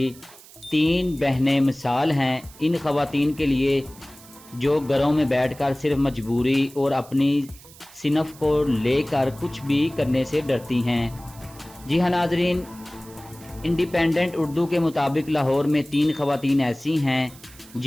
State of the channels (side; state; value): right; noise; hiss, 22 dB below the sound